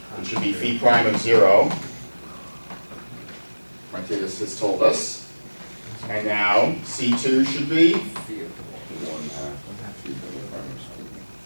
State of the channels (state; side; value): inverted; both; correlation -1.00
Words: It should be phi prime of 0. Martinez has told us. And now C2 should be